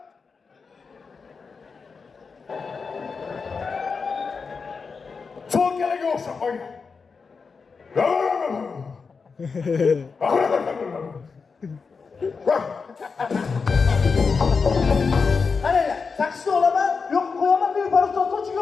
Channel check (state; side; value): quieter; right; 5.0 dB